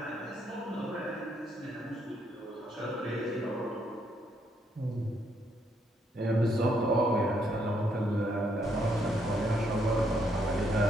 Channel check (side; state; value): both; normal; correlation 0.73